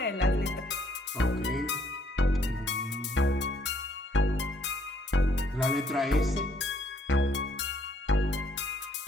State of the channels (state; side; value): normal; both; correlation 0.66